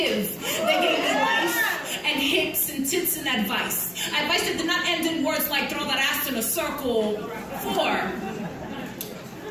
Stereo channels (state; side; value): identical; both; correlation 1.00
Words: They gave me life and hips and tits and advice. Advice that did not end in words like throw that ass in a circle. 4,